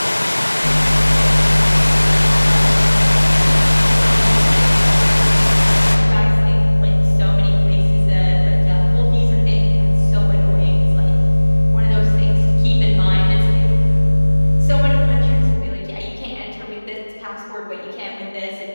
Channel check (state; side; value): inverted; both; correlation -1.00